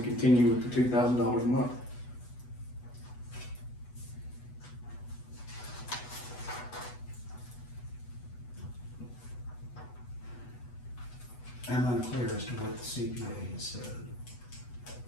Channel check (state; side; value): late; right; 8.1 ms